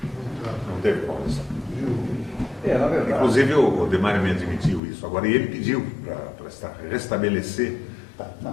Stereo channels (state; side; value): drops out; right; at 4.8 s